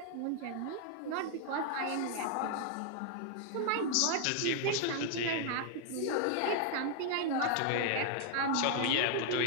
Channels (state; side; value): different; both; correlation 0.00